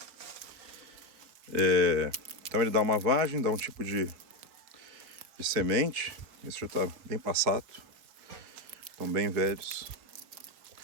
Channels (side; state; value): left; late; 4.5 ms